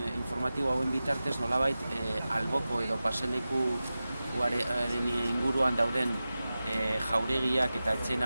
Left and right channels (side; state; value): both; inverted; correlation -0.95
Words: hauen bitartez nolabait alboko edo paselekuaren inguruan dauden jauregiak eta etxe